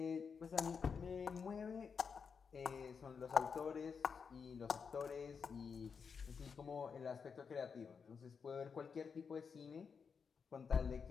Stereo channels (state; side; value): quieter; right; 6.0 dB